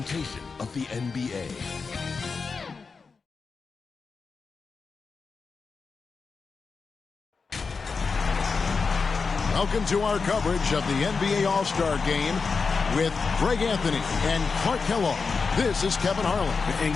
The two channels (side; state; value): right; quieter; 4.9 dB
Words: of the NBA. Welcome to our coverage of the NBA All-Star Game with Greg Anthony and Clark Kellogg. This is Kevin Harlan. And